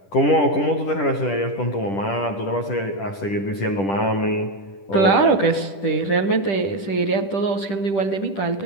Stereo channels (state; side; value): late; right; 10 ms